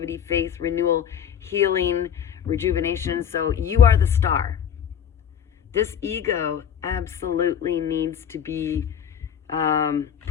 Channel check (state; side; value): quieter; right; 8.6 dB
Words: faith, renewal, healing, rejuvenation. So you are the star. This ego absolutely needs to be